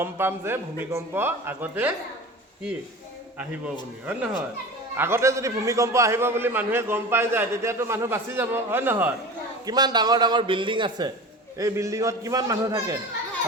পাম যে ভূমিকম্প আগতে কি আহিব বুলি হয় নহয় আগতে যদি ভূমিকম্প আহিব বুলি মানুহে গম পাই যায় তেতিয়াতো মানুহ বাচি যাব হয় নহয় কিমান ডাঙৰ ডাঙৰ বিল্ডিং আছে এই বিল্ডিঙত কিমান মানুহ থাকে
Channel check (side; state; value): both; normal; correlation 0.34